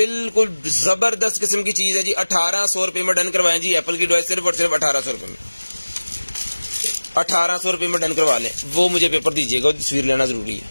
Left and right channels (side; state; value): both; inverted; correlation -1.00